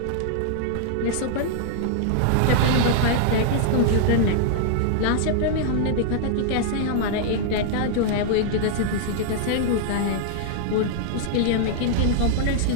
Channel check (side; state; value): both; different; correlation -0.01